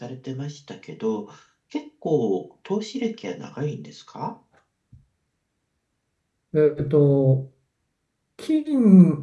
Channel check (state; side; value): identical; both; correlation 1.00